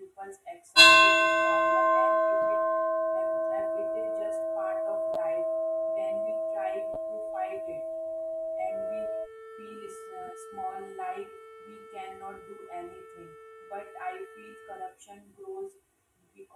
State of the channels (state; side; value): identical; both; correlation 1.00